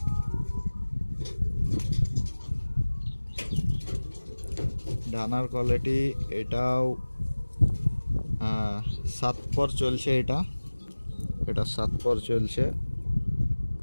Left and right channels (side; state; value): both; inverted; correlation -1.00